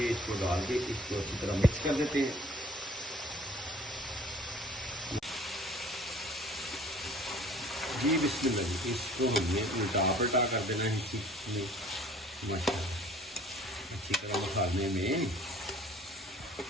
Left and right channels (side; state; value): both; normal; correlation 0.52